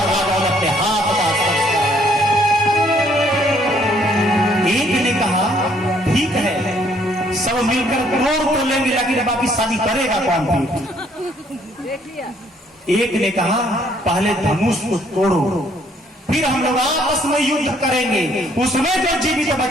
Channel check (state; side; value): normal; both; correlation 0.65